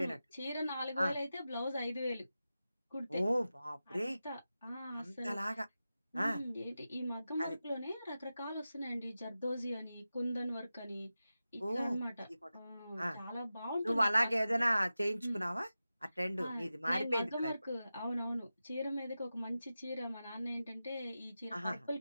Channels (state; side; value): inverted; both; correlation -0.93